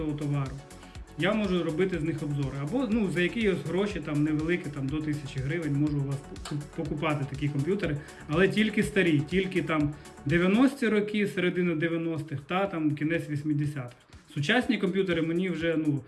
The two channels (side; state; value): both; identical; correlation 1.00